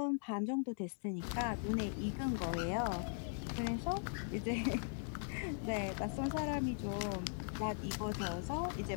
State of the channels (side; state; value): right; silent; digital silence